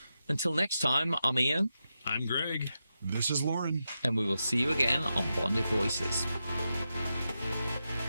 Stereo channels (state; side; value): inverted; both; correlation -0.88